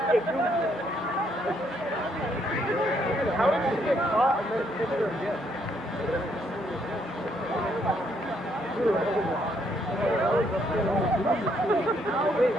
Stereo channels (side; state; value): both; normal; correlation 0.71